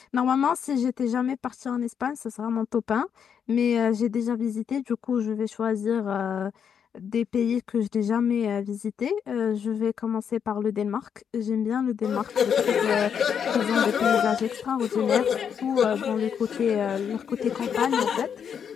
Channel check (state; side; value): quieter; right; 7.6 dB